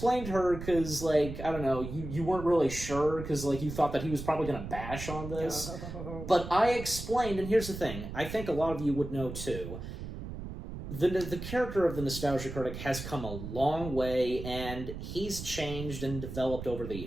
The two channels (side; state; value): right; noise; rumble, 8 dB below the sound